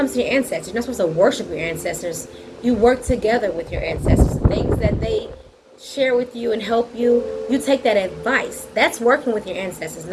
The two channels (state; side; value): identical; both; correlation 1.00